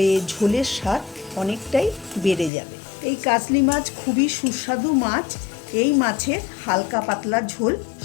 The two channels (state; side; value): drops out; right; at 2.5 s